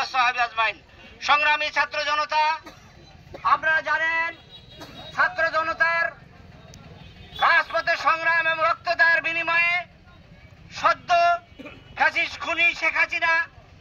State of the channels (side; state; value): both; identical; correlation 1.00